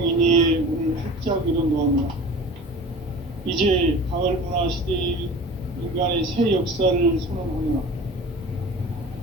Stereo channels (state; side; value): normal; both; correlation 0.38